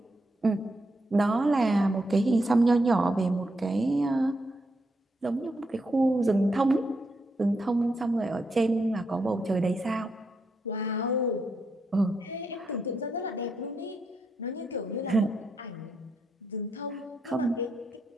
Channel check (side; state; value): both; normal; correlation 0.81